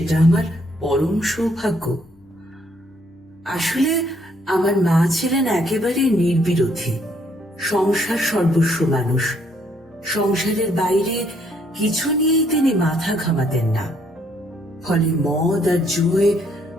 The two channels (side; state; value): both; normal; correlation 0.68